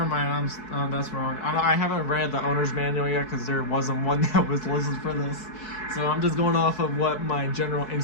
mind. That's wrong. I haven't read the owner's manual yet because there wasn't one that was listed for this. So I'm just going off of what my general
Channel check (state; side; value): late; right; 4.6 ms